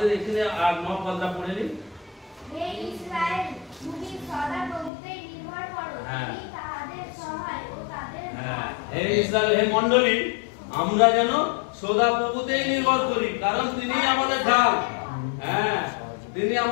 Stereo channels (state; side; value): drops out; right; at 4.9 s